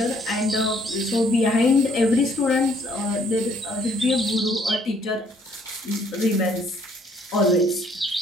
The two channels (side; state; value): both; normal; correlation 0.64